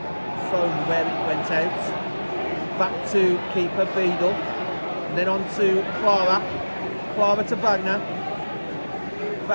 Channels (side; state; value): both; inverted; correlation -1.00